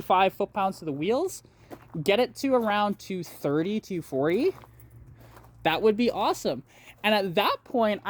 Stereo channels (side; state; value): both; identical; correlation 1.00